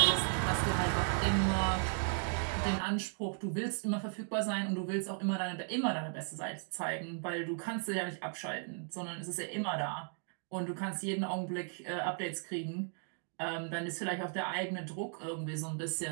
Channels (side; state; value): left; silent; 54 dB below the other